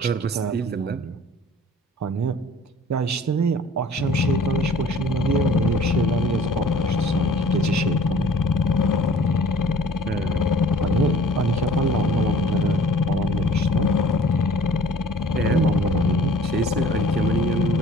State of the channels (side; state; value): both; normal; correlation 0.50